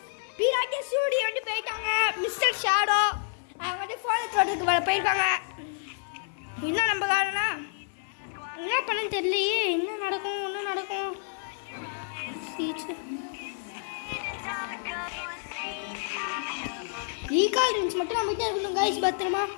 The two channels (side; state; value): right; silent; 57 dB below the other